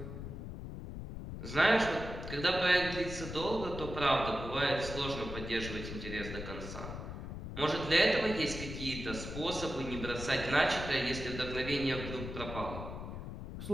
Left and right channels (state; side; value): noise; left; rumble, 8 dB below the sound